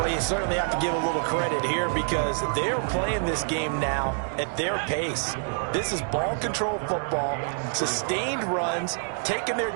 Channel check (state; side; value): silent; left; digital silence